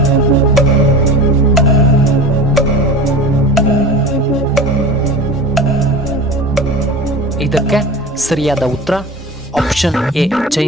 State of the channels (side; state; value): both; normal; correlation 0.33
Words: ಇದಕ್ಕೆ ಸರಿಯಾದ ಉತ್ತರ ಆಪ್ಷನ್ ಎ